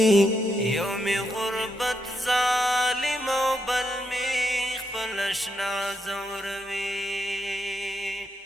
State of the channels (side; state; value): both; normal; correlation 0.81